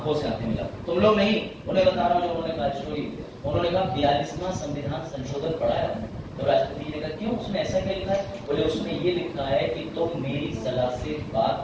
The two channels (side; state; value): both; identical; correlation 1.00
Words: से आंखें मिला, तुम लोग नहीं, उन्हें बता रहा हूँ जो उन्होंने कहा स्टोरी। उन्होंने कहा 42वां संविधान संशोधन पढ़ा है। तो राष्ट्रपति जी ने कहा क्यों, उसमें ऐसा क्या लिखा है? बोले उसमें ये लिखा है कि तुम मेरी सलाह से